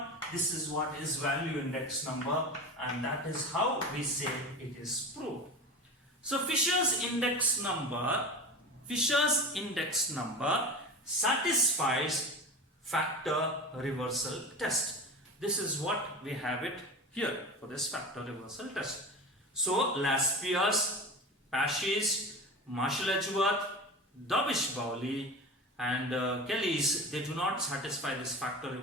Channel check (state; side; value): normal; both; correlation 0.29